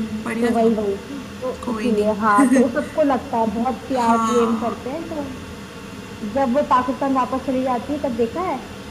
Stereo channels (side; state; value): both; identical; correlation 1.00